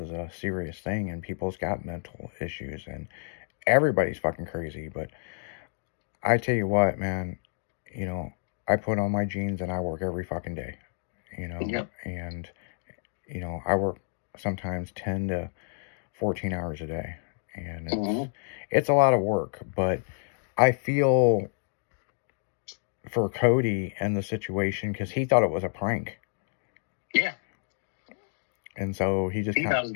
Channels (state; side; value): silent; right; digital silence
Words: a serious thing and people's got mental issues and everybody's fucking crazy. But I tell you what, man, you know, I put on my jeans and I work every fucking day, you know, Yep. and, you know, I work sometimes 10 to 14 hours a day. And it's a lot of work, but I feel for Cody and the situation because he thought it was a prank. Yeah. And so he just He thought his